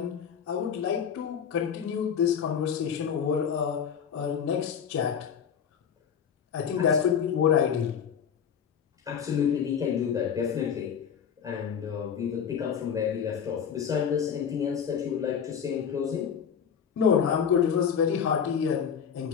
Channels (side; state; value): right; quieter; 7.6 dB